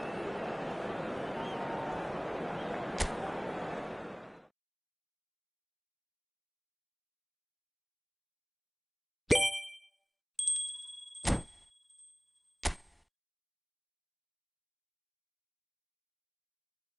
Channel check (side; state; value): both; identical; correlation 1.00